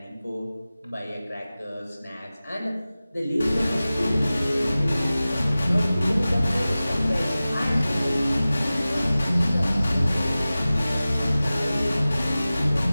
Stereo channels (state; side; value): inverted; both; correlation -0.97